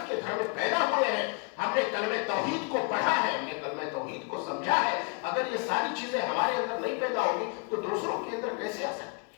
کے گھر میں پیدا ہوئے ہیں. ہم نے کلمہ توحید کو پڑھا ہے، ہم نے کلمہ توحید کو سمجھا ہے. اگر یہ ساری چیزیں ہمارے اندر نہیں پیدا ہوگی تو دوسروں کے اندر کیسے آ سکتی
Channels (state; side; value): quieter; right; 32.4 dB